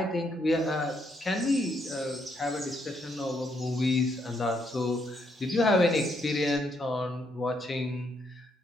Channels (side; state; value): both; normal; correlation 0.75